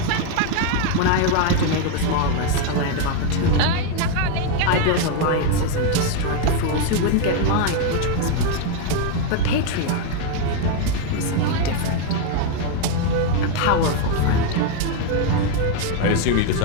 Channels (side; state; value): both; different; correlation 0.01